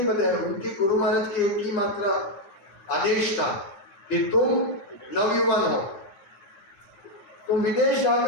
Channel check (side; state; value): right; late; 9.7 ms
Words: बताया, उनकी गुरु महाराज की एक ही मात्रा आदेश था कि तुम नवयुवान हो, तुम विदेश